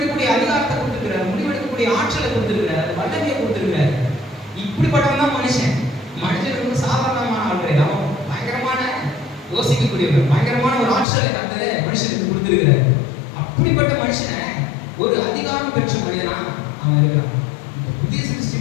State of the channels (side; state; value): right; drops out; at 11.1 s